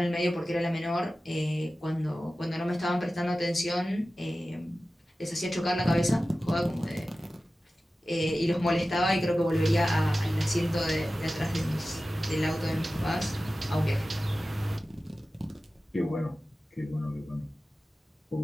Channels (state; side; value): normal; both; correlation 0.95